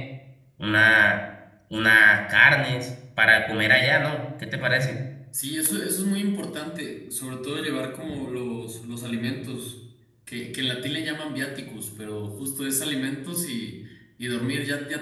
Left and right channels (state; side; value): identical; both; correlation 1.00